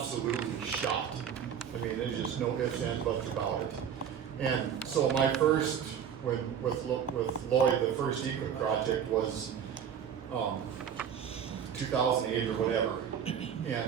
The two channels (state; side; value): quieter; left; 8.2 dB